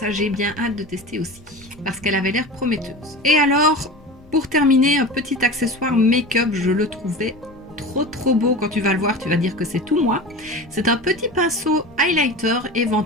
j'ai bien hâte de tester aussi parce qu'elle avait l'air prometteuse. Et alors, pour terminer, un petit accessoire make-up, je le trouvais trop beau. Quand tu vas le voir, tu vas dire que c'est tout moi. C'est un petit pinceau highlighter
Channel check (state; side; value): noise; left; rumble, 26 dB below the sound